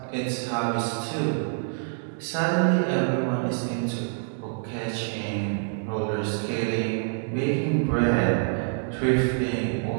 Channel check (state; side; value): silent; left; digital silence